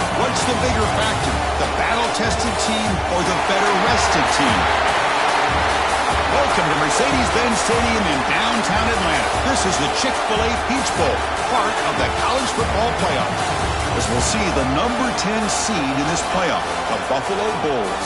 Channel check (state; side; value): identical; both; correlation 1.00